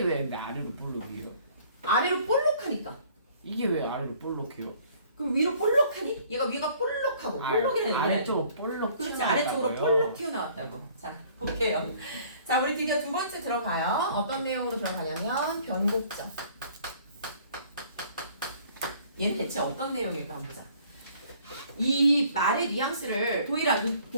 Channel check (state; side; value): inverted; both; correlation -0.56